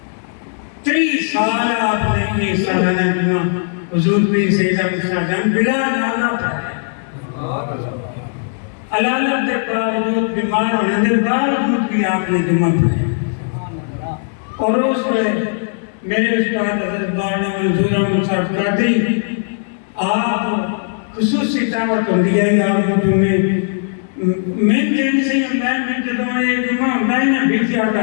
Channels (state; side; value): silent; right; digital silence